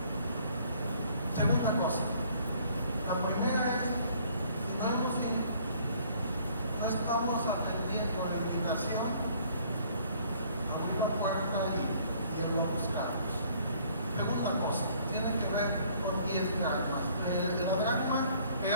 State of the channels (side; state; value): both; inverted; correlation -0.59